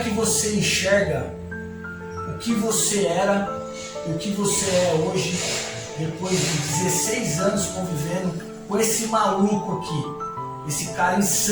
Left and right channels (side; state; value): both; identical; correlation 1.00